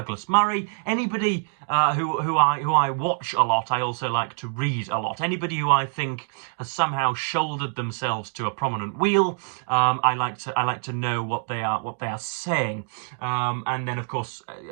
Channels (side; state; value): left; silent; 58 dB below the other